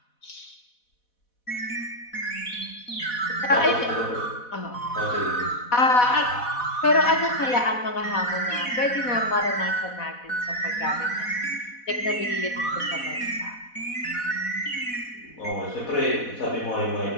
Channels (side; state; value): right; late; 4.1 ms